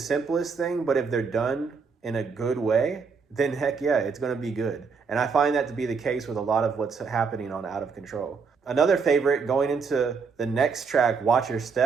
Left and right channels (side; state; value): left; quieter; 5.3 dB